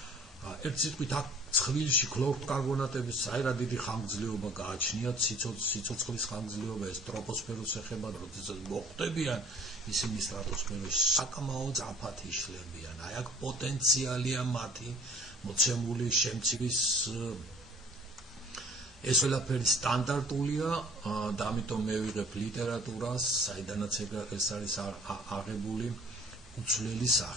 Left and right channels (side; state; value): both; normal; correlation 0.51